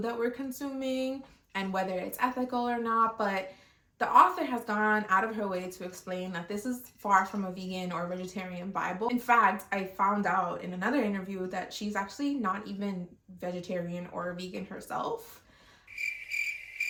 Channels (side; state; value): both; identical; correlation 1.00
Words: that we're consuming and whether it's ethical or not. But the author has gone out of her way to explain that this is far from a vegan or vegetarian Bible. In fact, I found out in another interview that she's actually not even vegetarian or vegan herself.